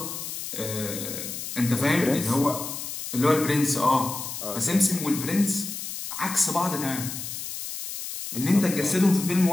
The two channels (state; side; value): noise; left; hiss, 7 dB below the sound